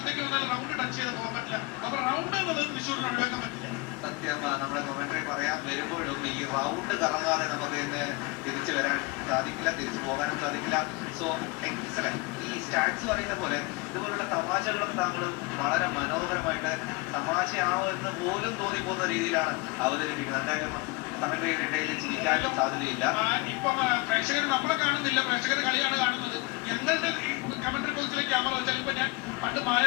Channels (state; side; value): quieter; right; 25.4 dB